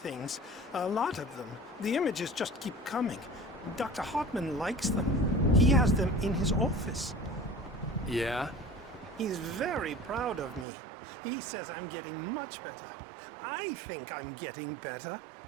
things, a lot of them. The images just keep coming. Dr. Hartman likes them. He has them in his office. Yeah? He's very proud of me. He says I'm getting much better. I think I'm getting better.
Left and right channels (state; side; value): drops out; left; at 10.7 s